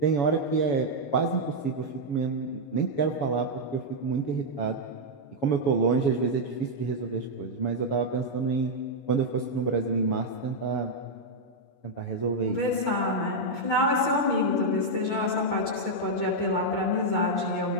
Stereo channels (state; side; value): late; right; 7.1 ms